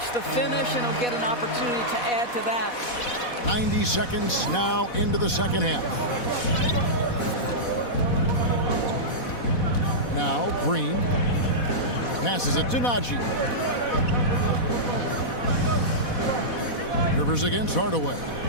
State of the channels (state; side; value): late; right; 4.1 ms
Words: the finish, and he'll get an opportunity to add to that. 90 seconds now into the second half. Now Green passes it to Najee. Rivers against Hardaway.